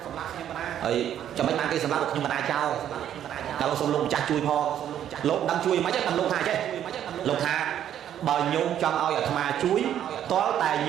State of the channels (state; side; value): quieter; left; 10.4 dB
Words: ấy cho mấy mang cái sầm lắc được nhưng mà na trao kalau xong lông cha chui pho lông đang chui mấy chắc tầm lông hà chứ lông hà bờ nhôm trong ao ở thà chuối có tài